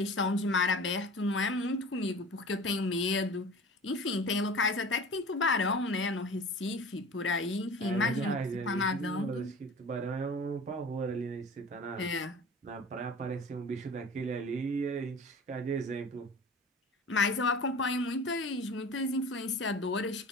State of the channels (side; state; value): both; normal; correlation 0.39